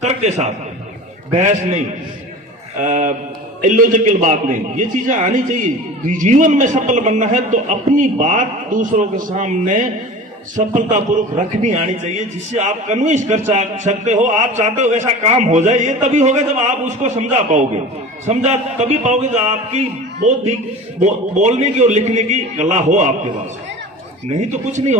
तर्क के साथ, बहस नहीं, इलॉजिकल बात नहीं। ये चीजें आनी चाहिए। जीवन में सफल बनना है तो अपनी बात दूसरों के सामने सफलतापूर्वक रखनी आनी चाहिए, जिससे आप कन्विंस कर सकते हो, आप चाहते हो वैसा काम हो जाए। ये तभी होगा जब आप उसको समझा पाओगे। समझा तभी पाओगे जब आपकी बौद्धिक बोलने की और लिखने की कला हो आपके पास, नहीं तो कुछ नहीं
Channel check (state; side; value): normal; both; correlation 0.36